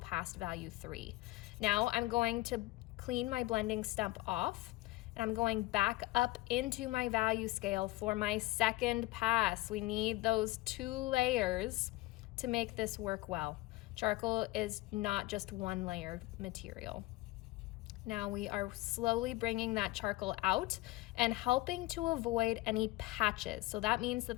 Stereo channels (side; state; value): right; quieter; 19.0 dB